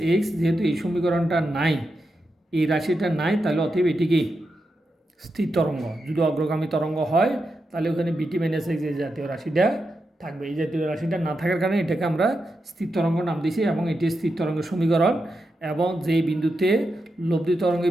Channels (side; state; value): both; normal; correlation 0.87